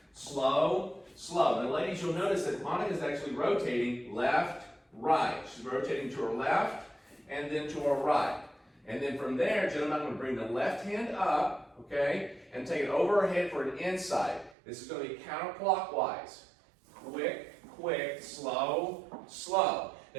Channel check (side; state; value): left; drops out; at 14.6 s